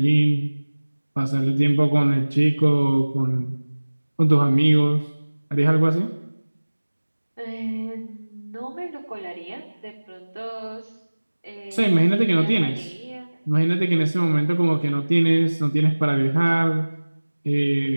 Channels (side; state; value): both; inverted; correlation -1.00